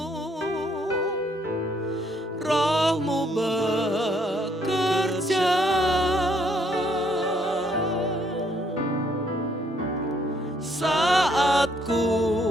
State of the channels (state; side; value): normal; both; correlation 0.68